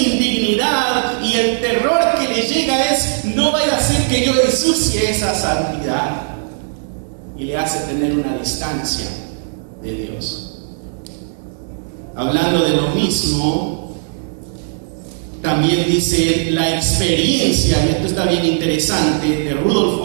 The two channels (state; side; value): silent; left; digital silence